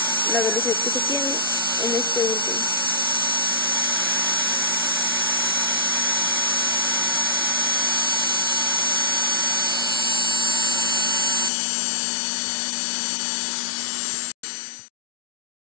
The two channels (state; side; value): drops out; right; at 11.5 s